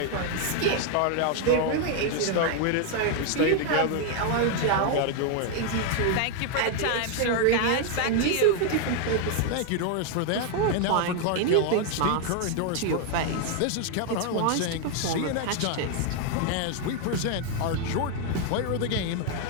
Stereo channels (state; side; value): different; both; correlation 0.00